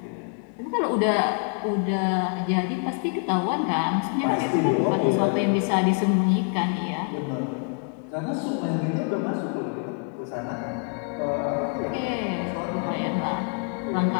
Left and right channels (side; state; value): right; quieter; 39.1 dB